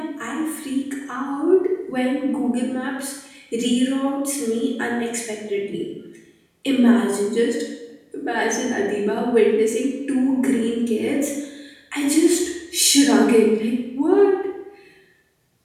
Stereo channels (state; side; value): identical; both; correlation 1.00